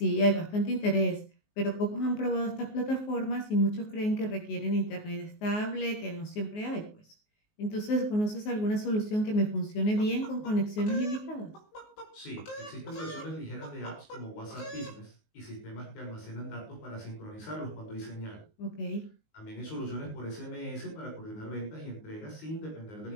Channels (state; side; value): late; right; 19 ms